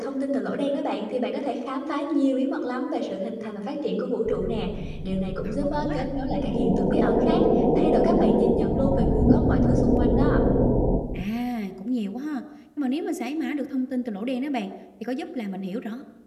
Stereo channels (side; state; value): both; identical; correlation 1.00